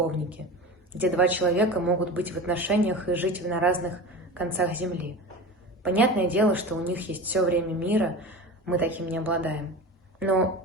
где два человека могут быть в отношениях и жить на разных концах земли. Понятное дело, что у них есть все время мира, мы таким не обладаем. Но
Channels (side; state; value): both; normal; correlation 0.30